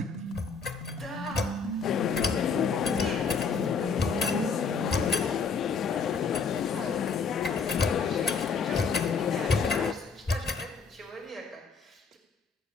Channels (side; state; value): right; quieter; 5.1 dB